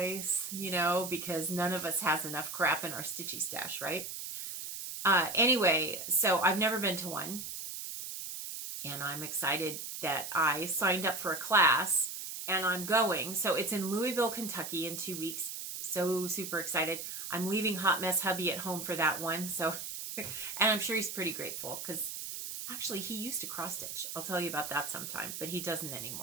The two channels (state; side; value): noise; right; hiss, 7 dB below the sound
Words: because none of us has enough crap in our stitchy stash, right? Anyway, so I've never been to one, and I'm excited that I signed up for a class, and I'm going. So it's in Louisville, Kentucky in 2 weeks. So super excited. I'm leaving Hot Mess Hubby at home for that one. So, and I'm sure he's pretty grateful because actually he used to cross stitch. I'll tell you about that sometime, but he doesn't